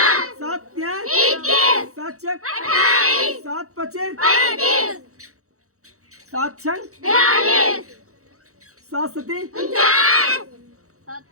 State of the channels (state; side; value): late; left; 0.65 ms